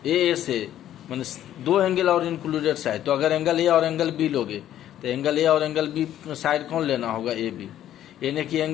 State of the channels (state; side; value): quieter; right; 11.8 dB